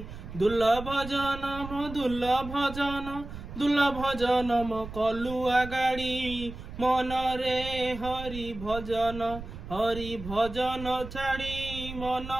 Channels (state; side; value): noise; right; rumble, 11 dB below the sound